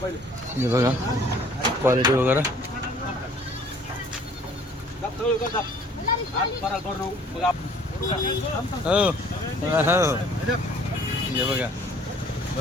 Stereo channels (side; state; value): both; normal; correlation 0.55